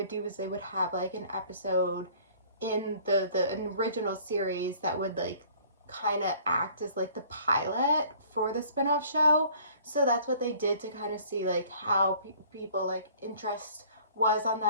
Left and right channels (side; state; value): both; inverted; correlation -0.53